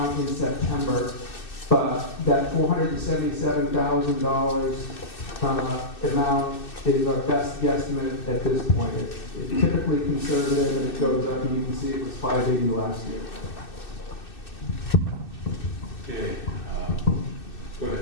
in September. But that $477,000 amount is our best guesstimate at this point. It's typically conservative, and it goes up, and you can see it was $580 last year. Okay, go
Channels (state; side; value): late; right; 2.6 ms